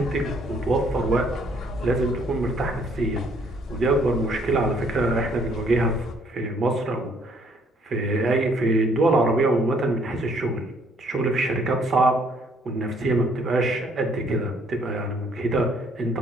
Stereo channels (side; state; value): both; normal; correlation 0.65